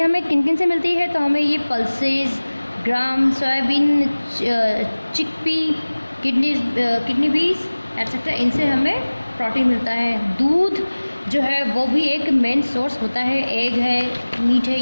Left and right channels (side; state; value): both; inverted; correlation -1.00